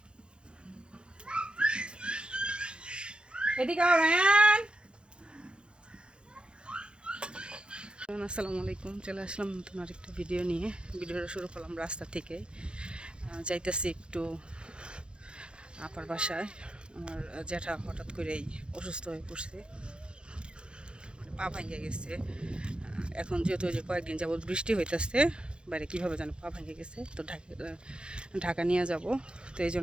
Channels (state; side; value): late; left; 0.053 ms